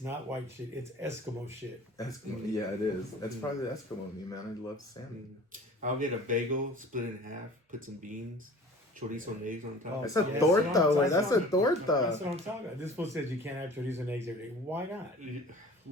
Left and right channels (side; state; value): both; normal; correlation 0.44